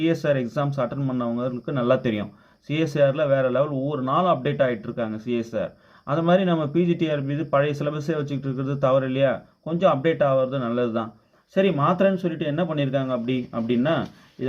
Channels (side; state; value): both; identical; correlation 1.00